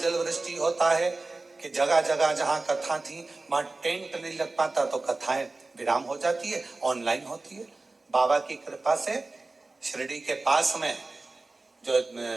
वृष्टि होता है कि जगह जगह जहां कथा थी वहां टेंट नहीं लग पाता, तो कथाएं विराम हो जाती है, ऑनलाइन होती है। बाबा की कृपा से शिरडी के पास में जो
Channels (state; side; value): quieter; left; 3.3 dB